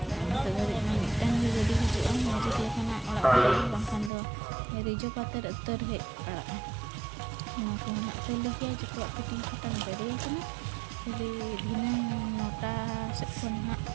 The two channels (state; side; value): drops out; left; at 4.1 s